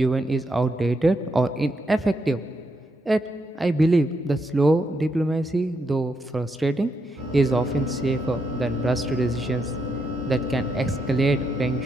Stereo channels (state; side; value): normal; both; correlation 0.80